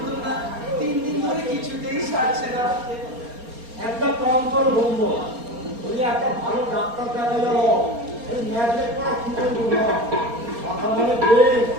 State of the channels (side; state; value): left; late; 4.3 ms